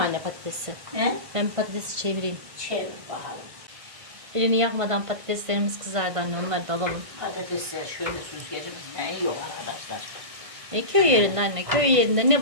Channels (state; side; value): late; left; 1.5 ms